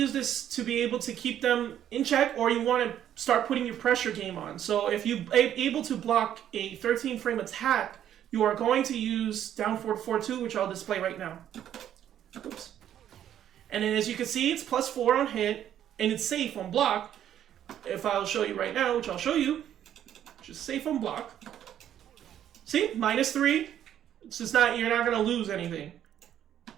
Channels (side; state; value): left; quieter; 10.6 dB